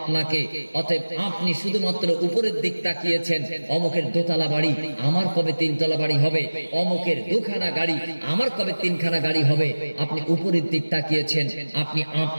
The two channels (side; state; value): both; inverted; correlation -1.00